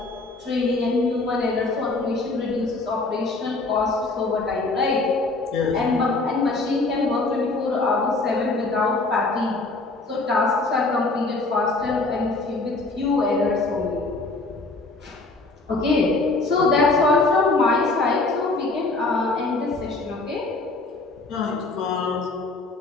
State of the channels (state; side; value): quieter; right; 3.4 dB